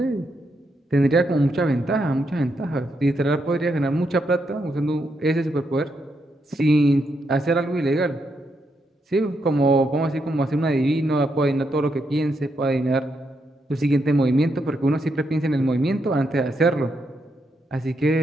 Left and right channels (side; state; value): both; normal; correlation 0.80